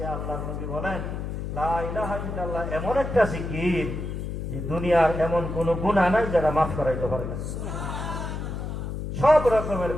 আল্লাহর নবী বলেন, লা ইলাহা ইল্লাল্লাহ এমন একটা জিকির যে দুনিয়ার এমন কোন গুনাহ নাই যারা মাফ করাইতে পারে না। সব রকমের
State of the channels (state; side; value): noise; left; hum, 5 dB below the sound